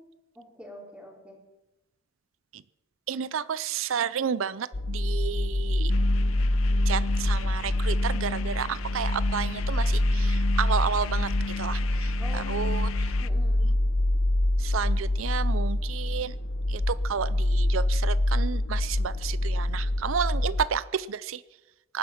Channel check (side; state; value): both; normal; correlation 0.70